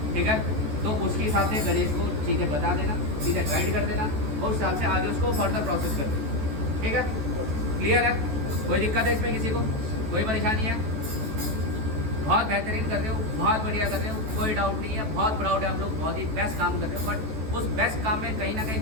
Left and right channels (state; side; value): late; left; 14 ms